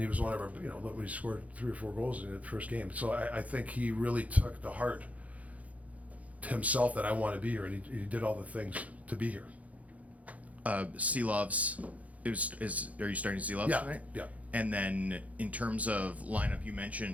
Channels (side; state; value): left; late; 0.069 ms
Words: was one of our, look, he scored 3 or 4 goals in the first game. So I think he really took to heart himself that I want to be here, and he did all the things to be here. Seelovs, are you starting Seelovs tonight? Yeah. And then in terms of lineup, you